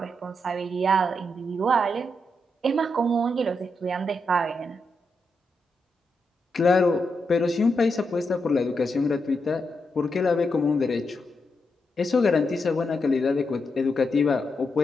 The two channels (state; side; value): normal; both; correlation 0.84